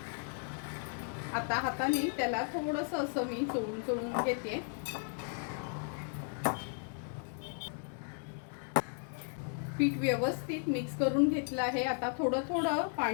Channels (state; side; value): silent; right; 54 dB below the other